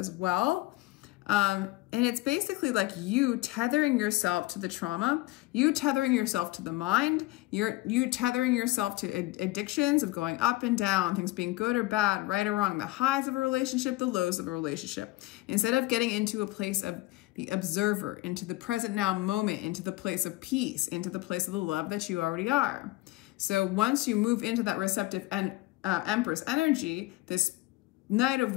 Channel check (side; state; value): right; quieter; 19.7 dB